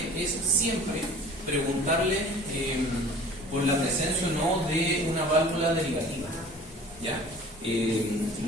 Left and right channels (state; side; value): normal; both; correlation 0.46